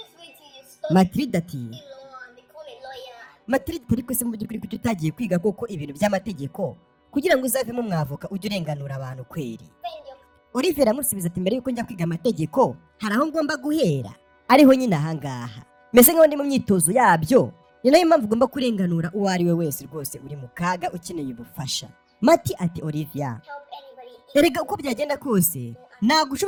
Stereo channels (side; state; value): both; identical; correlation 1.00